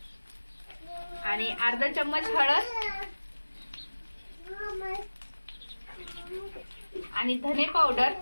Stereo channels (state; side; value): inverted; both; correlation -1.00